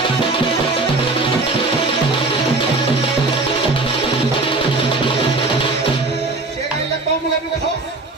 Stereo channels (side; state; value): left; quieter; 3.3 dB